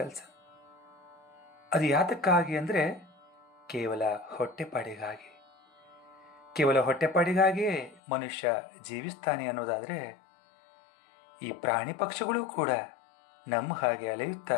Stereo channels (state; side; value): drops out; right; at 8.0 s